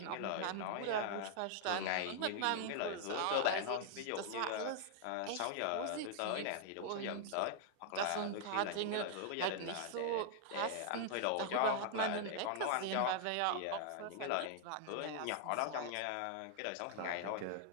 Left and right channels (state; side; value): different; both; correlation -0.01